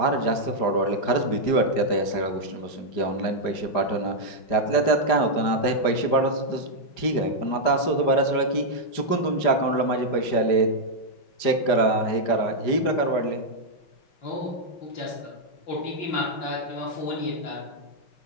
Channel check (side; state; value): right; late; 5.1 ms